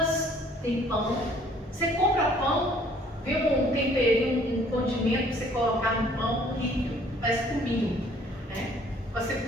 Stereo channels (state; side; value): normal; both; correlation 0.58